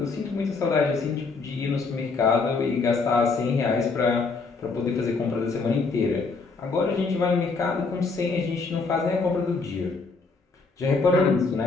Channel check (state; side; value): quieter; right; 4.2 dB